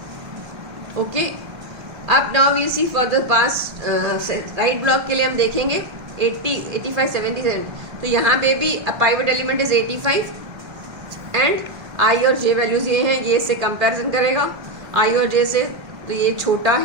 ओके, अब now we see for the past right block के लिए हम देखेंगे 80 85 77। तो यहाँ पे भी pivot element is 85 and I और जे वैल्यूज ये हैं, ये इससे कंपैरिजन करेगा आई और जे से, तो ये छोटा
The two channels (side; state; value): left; late; 1.3 ms